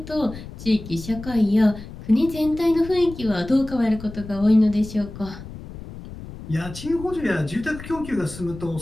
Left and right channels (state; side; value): noise; left; rumble, 13 dB below the sound